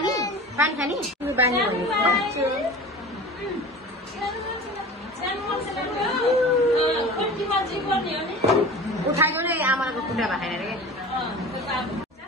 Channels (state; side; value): normal; both; correlation 0.36